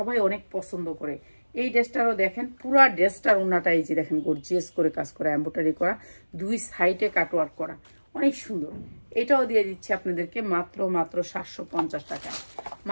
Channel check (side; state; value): both; inverted; correlation -1.00